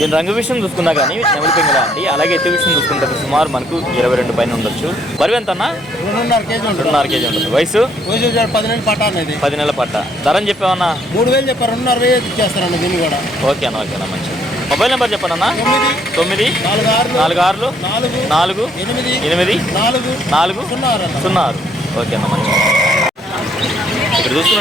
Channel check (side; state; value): both; normal; correlation 0.67